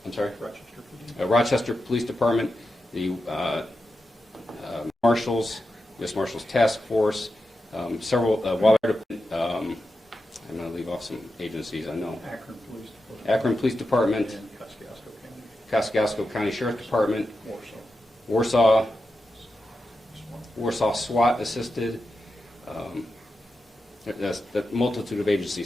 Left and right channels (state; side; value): normal; both; correlation 0.89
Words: Rochester Police Department, the Marshals, U.S. Marshals Task Force, several Water Department. I'm going to leave off some agencies I know. Akron Police Department, Kosciuszko County Sheriff's Department, Warsaw SWAT assisted. That's the multitude of